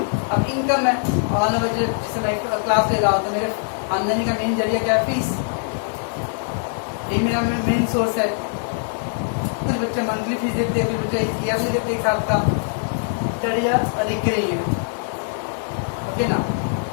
अब इनकम है और जैसे मैं क्लास ले रहा हूँ तो मेरे आमदनी का मेन जरिया क्या है? फीस. ये मेरा मेन सोर्स है. कुछ बच्चे मंथली फीस देते हैं, कुछ बच्चे ईयरली देते हैं, एक साल का. दैट इज अ रिकरिंग है. ओके ना.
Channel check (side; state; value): right; silent; 57 dB below the other